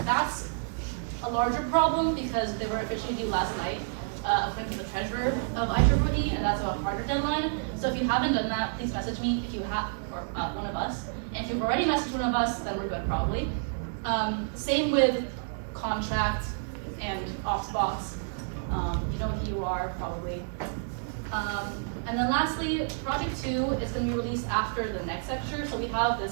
that's a larger problem because they were officially due last night, according to the treasurer of IEEE, and that's a harder deadline. So if you haven't done that, please message me if you have, or one of us. And if you've already messaged one of us, then we're good probably. Same with contract and ops box. You know who you are probably. And then lastly, project 2 is going to be released after the next lecture. So we have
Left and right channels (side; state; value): left; silent; digital silence